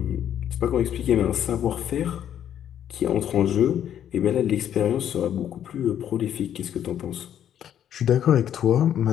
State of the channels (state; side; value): quieter; right; 10.1 dB